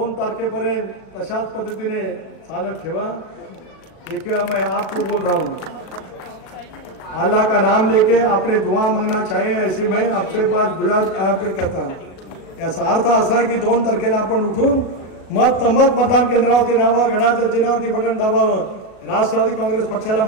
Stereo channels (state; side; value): late; right; 38 ms